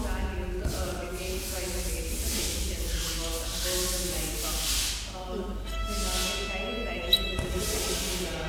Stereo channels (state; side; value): identical; both; correlation 1.00